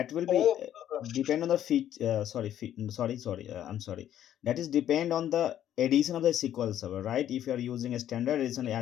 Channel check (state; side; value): quieter; right; 11.1 dB